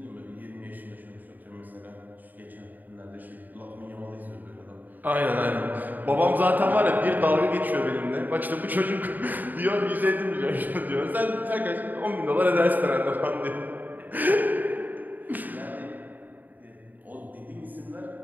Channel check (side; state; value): left; late; 0.085 ms